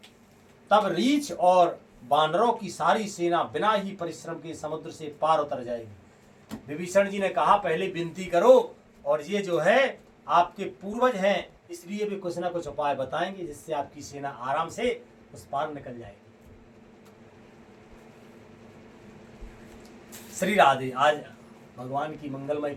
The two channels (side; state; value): both; identical; correlation 1.00